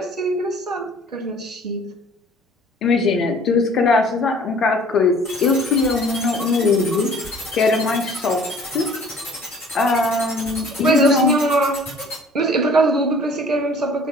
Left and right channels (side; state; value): both; normal; correlation 0.51